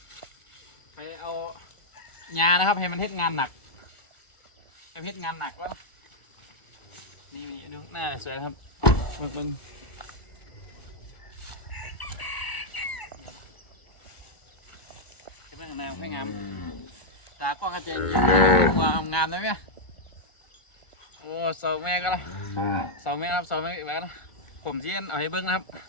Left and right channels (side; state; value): right; late; 1.4 ms